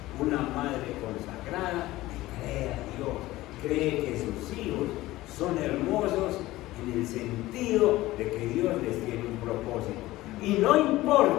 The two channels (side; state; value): right; quieter; 17.4 dB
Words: una madre consagrada le cree a Dios, cree que sus hijos son hermosos en el sentido de que Dios les tiene un propósito. Y no